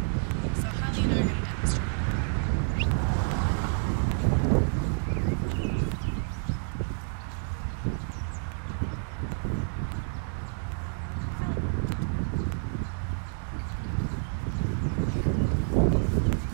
So Holly and I are going to demonstrate.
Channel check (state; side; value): silent; left; digital silence